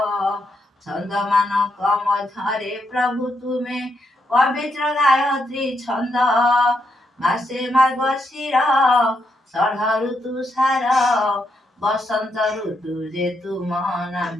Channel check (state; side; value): normal; both; correlation 0.80